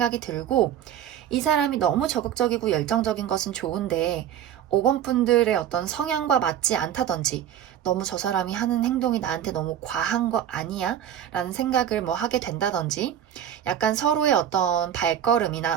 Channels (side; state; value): left; quieter; 10.2 dB